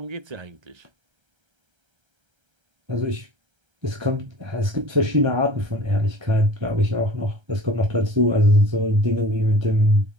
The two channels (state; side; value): late; left; 1.3 ms